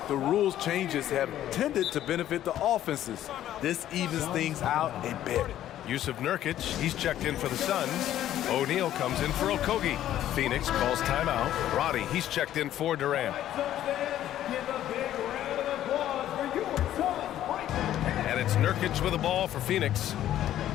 the rules changes have tended to benefit the offenses. This evens things out a bit. Yusuf Nurkic, he's checked in for the Suns. O'Neal comes in for Okogie. Phoenix calls timeout. Roddy, he's checked in for Durant. And it's Nurkic with the ball for Phoenix.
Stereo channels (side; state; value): right; quieter; 12.2 dB